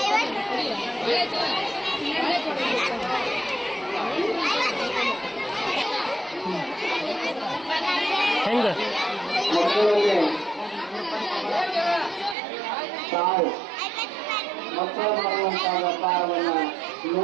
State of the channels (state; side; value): drops out; left; at 12.4 s